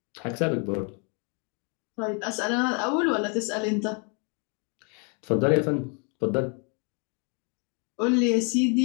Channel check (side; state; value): right; quieter; 36.5 dB